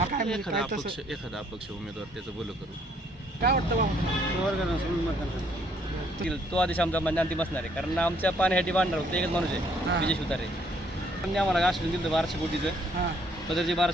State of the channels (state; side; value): normal; both; correlation 0.66